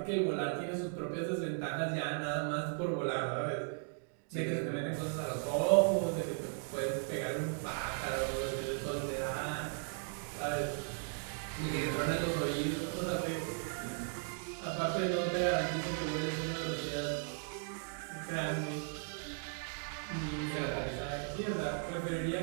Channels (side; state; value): left; silent; 53 dB below the other